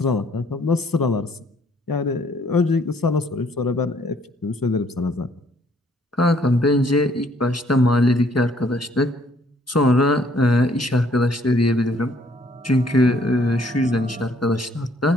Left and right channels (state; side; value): normal; both; correlation 0.64